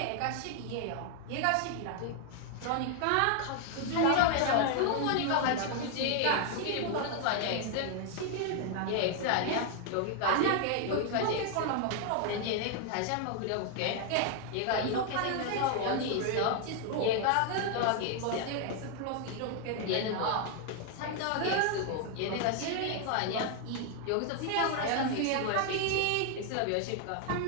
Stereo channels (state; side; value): different; both; correlation 0.00